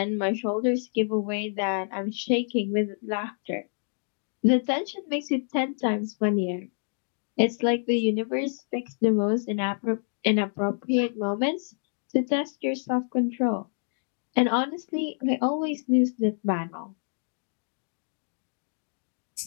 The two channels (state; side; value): silent; right; digital silence